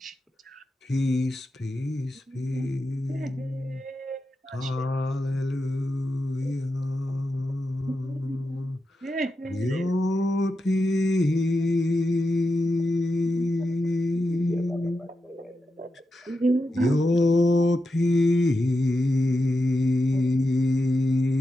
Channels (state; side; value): normal; both; correlation 0.88